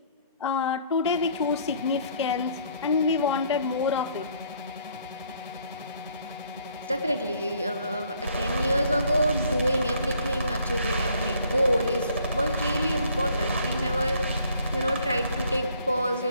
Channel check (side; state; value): both; inverted; correlation -0.62